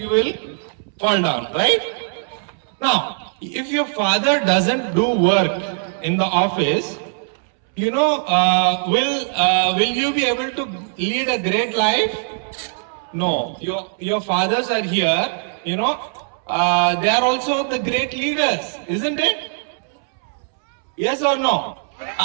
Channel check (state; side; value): silent; left; 65 dB below the other